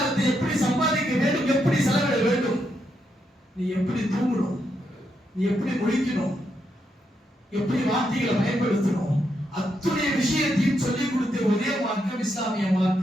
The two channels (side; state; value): both; normal; correlation 0.80